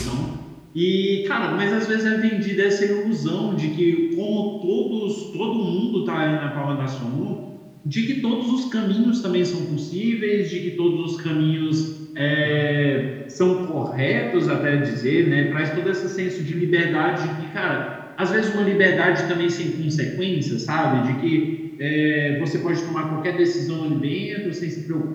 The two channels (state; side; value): identical; both; correlation 1.00